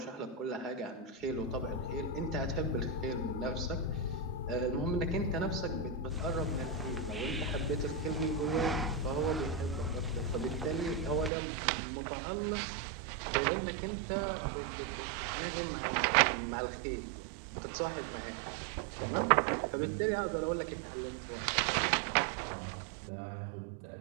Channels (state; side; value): drops out; left; at 11.3 s